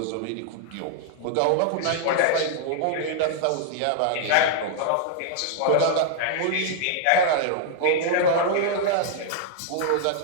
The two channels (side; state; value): both; different; correlation -0.01